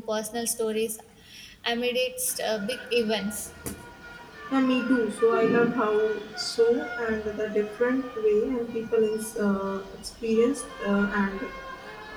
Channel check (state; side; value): identical; both; correlation 1.00